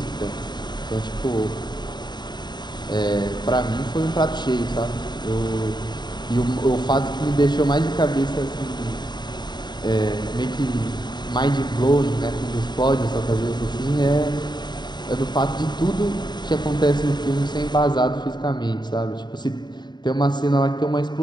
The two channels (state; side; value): late; right; 0.21 ms